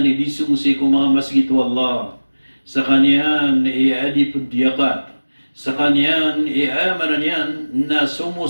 di sumusi ko mga masjid Allah. Sa kanya ni adi pundiyakat. Sa kanya ni amanan yan na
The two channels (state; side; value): inverted; both; correlation -1.00